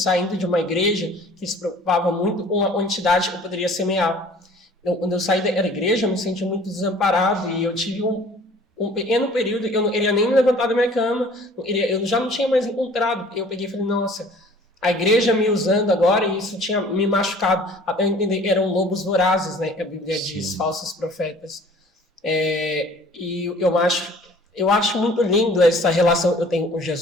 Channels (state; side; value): normal; both; correlation 0.51